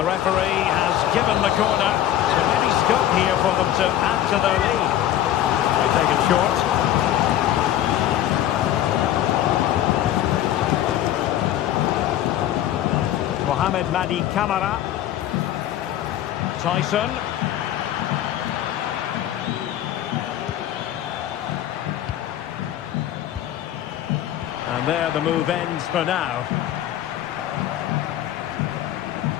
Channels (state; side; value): quieter; right; 12.1 dB